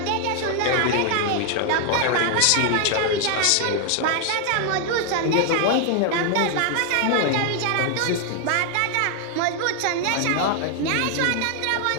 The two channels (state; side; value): different; both; correlation 0.00